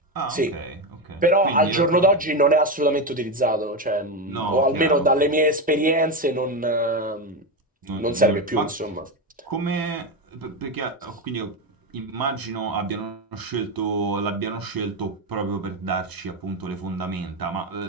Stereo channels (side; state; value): both; normal; correlation 0.13